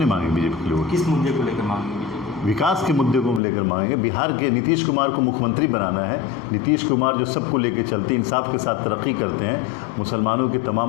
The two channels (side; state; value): right; drops out; at 3.4 s